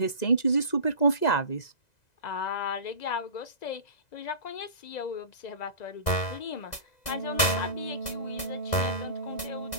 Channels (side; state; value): right; late; 2.0 ms